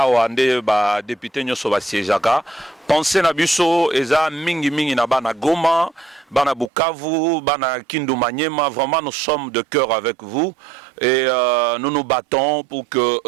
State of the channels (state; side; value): drops out; left; at 6.7 s